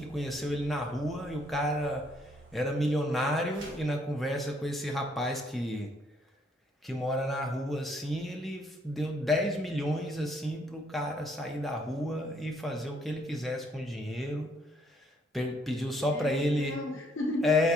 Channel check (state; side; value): normal; both; correlation 0.68